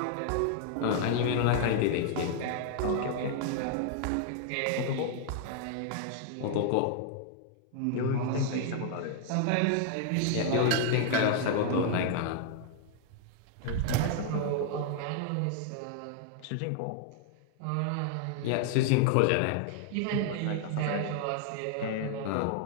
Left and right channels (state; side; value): different; both; correlation 0.00